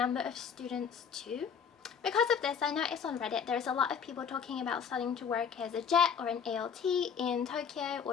of students too. Because of this, I noticed on Reddit there's a lot of people talking about starting to work as a JET or an ALT in Tokyo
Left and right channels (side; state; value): right; quieter; 7.0 dB